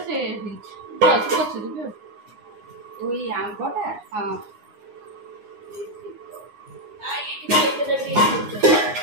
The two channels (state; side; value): late; left; 9.7 ms